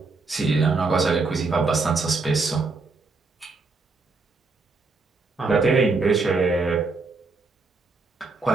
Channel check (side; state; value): left; quieter; 3.9 dB